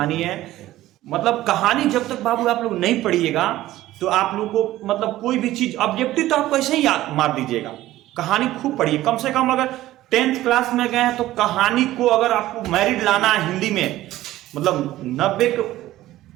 है। मतलब कहानी जब तक बाबू आप लोग नहीं पढ़िएगा तो आप लोग को मतलब कोई भी चीज ऑब्जेक्टिव तो आपको ऐसे ही याद मार दीजिएगा। कहानी खूब पढ़िए, कम से कम अगर 10th क्लास में गए हैं तो कहानी को अगर आपको मैरिट लाना है हिंदी में, मतलब 90 के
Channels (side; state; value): left; quieter; 15.3 dB